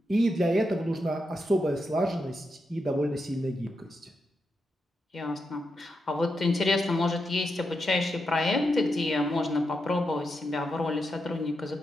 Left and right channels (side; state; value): both; normal; correlation 0.85